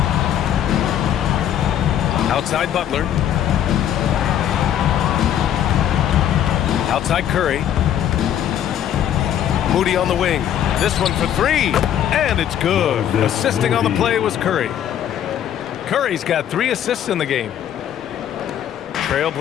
Outside Butler. Outside Curry. Moody on the wing. This one for 3. And it's good. Assisting on the play was Curry. Curry's got 3 assists in the game.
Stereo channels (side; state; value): right; quieter; 10.3 dB